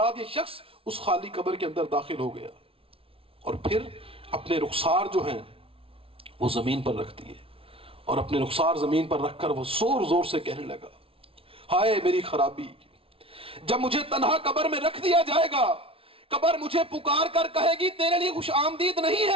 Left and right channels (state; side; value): late; left; 0.26 ms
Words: یہ شخص اس خالی قبر کے اندر داخل ہو گیا اور پھر اپنے رخسار جو ہیں وہ زمین پر رکھ دیے، اور اپنے رخسار زمین پر رکھ کر وہ زور زور سے کہنے لگا، ہائے میری خرابی، جب مجھے تنہا قبر میں رکھ دیا جائے گا، قبر مجھے پکار کر کہے گی تیرے لیے خوش آمدید نہیں